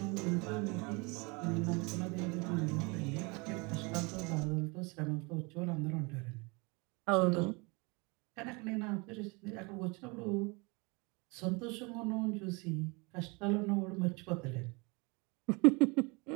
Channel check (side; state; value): left; quieter; 28.7 dB